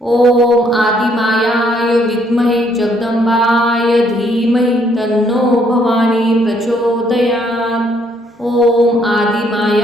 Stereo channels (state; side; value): normal; both; correlation 0.68